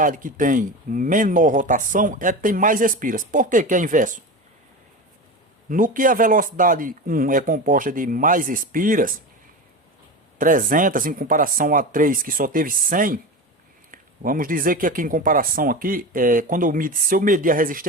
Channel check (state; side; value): normal; both; correlation 0.25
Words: que tem menor rotação, é a que tem mais espiras. Por que que é inverso? No que a velocidade 1 é composta de mais espiras, 300 em comparação a 3 que só teve 100, vamos dizer que aqui em comparação aqui, se eu medir a